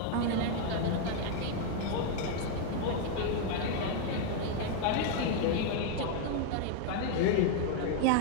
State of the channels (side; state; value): both; different; correlation 0.00